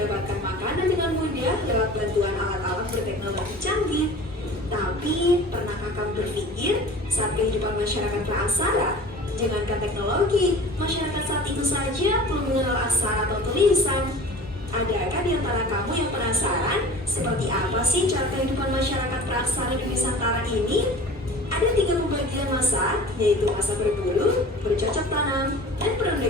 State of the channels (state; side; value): normal; both; correlation 0.41